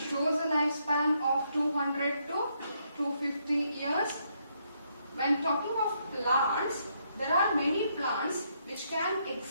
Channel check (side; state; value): both; inverted; correlation -0.75